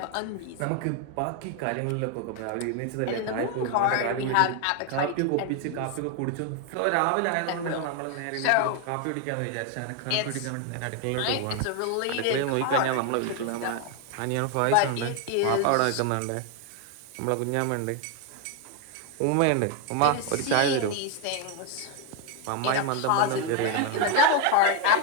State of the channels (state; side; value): different; both; correlation 0.01